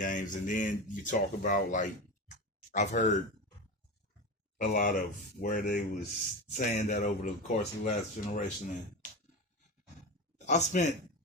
and then you talk about, like, I've heard a lot of where they was saying that over the course of the last generation, and I spent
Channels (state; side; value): normal; both; correlation 0.23